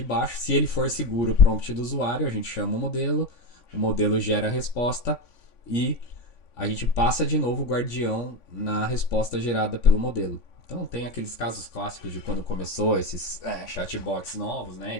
baixo, se ele for seguro o prompt do usuário, a gente chama o modelo gera a resposta e a gente passa de novo o guardião na resposta gerada pelo modelo. Então tem aqueles casos clássicos de quando começou esses chatbots novos, né,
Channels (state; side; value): late; right; 3.5 ms